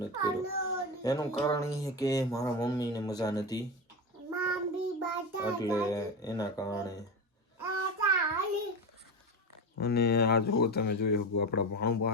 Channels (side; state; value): both; normal; correlation 0.20